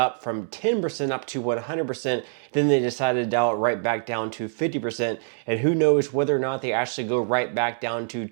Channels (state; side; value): silent; left; digital silence